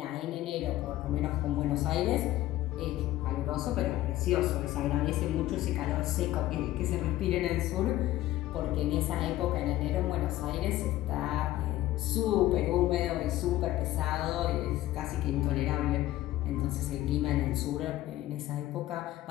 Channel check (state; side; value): quieter; right; 15.2 dB